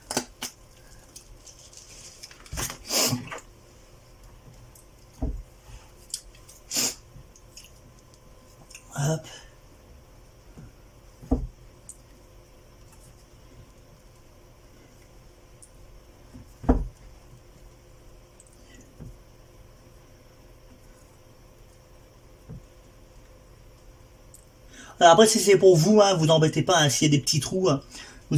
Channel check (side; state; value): both; identical; correlation 1.00